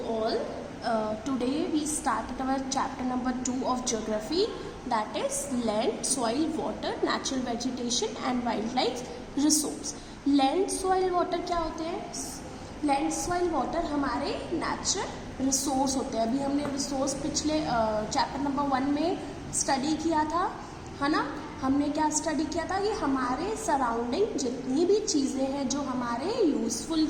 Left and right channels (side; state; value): both; identical; correlation 1.00